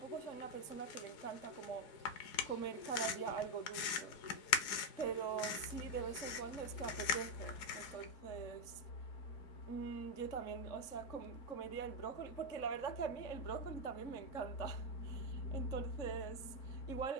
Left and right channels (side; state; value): right; late; 4.8 ms